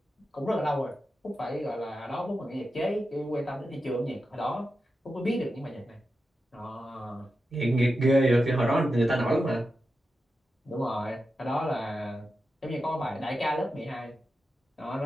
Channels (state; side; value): normal; both; correlation 0.90